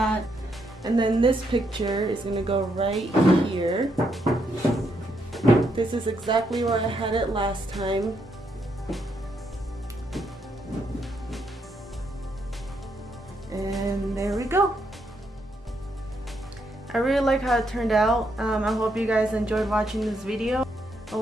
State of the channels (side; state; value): both; normal; correlation 0.77